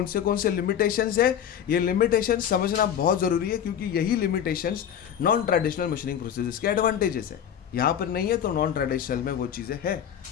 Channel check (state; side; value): quieter; right; 9.3 dB